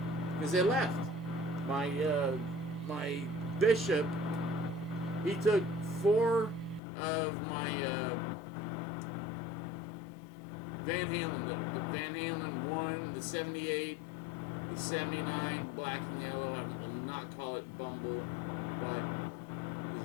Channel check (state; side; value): drops out; right; at 6.8 s